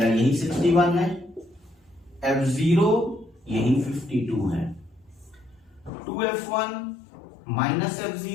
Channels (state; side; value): drops out; right; at 5.9 s